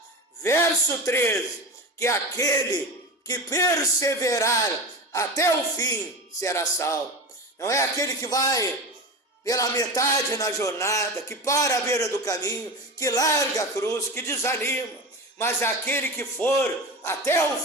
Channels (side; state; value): both; normal; correlation 0.27